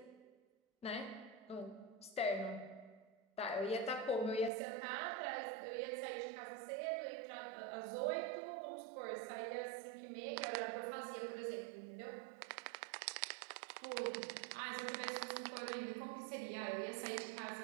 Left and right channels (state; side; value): drops out; left; at 4.5 s